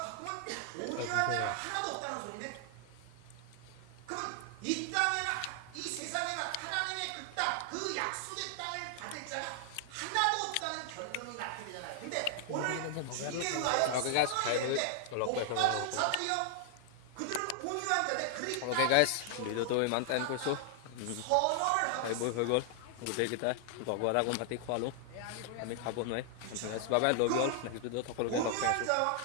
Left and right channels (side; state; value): both; different; correlation 0.00